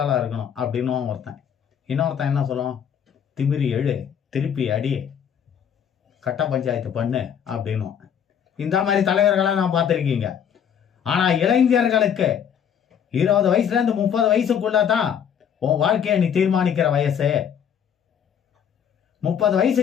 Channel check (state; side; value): quieter; right; 8.3 dB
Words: ஆளா இருக்கணும் அப்படின்னு ஒருத்தன். இன்னொருத்தன் என்ன சொல்லுவான், திமிரி எழு, திருப்பி அடி, கட்ட பஞ்சாயத்து பண்ணு அப்படின்னு. இந்த மாதிரி தலைவர்களை நான் பார்த்திருக்கீங்க. ஆனா இளைஞர்களுக்கு 20 வயசுல இருந்து 30 வயசுக்குள்ளதான் உன் வாழ்க்கையை நீ தீர்மானிக்கிற வயசு. 30